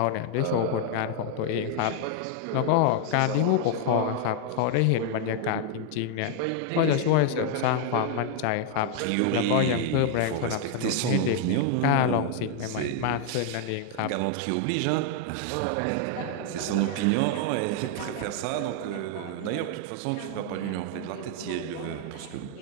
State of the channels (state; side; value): different; both; correlation 0.00